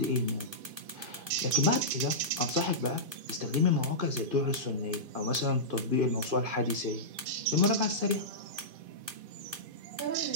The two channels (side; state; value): left; late; 2.5 ms